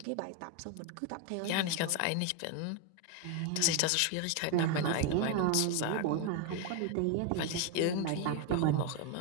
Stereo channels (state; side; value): different; both; correlation 0.01